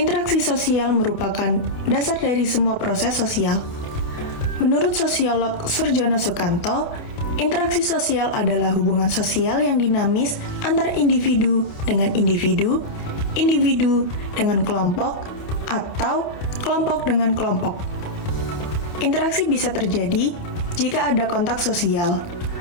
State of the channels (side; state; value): right; late; 28 ms